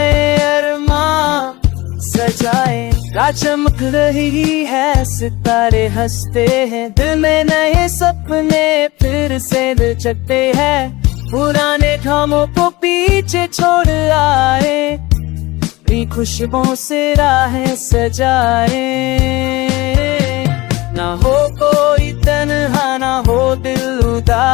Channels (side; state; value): right; quieter; 21.0 dB